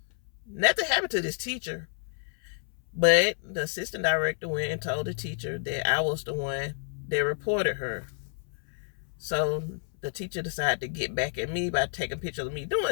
nothing happened to this teacher, but the assistant director went and told the teacher that I was the one that reported her. So the teacher decided to get back at me by taking pictures of me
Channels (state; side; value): silent; right; 58 dB below the other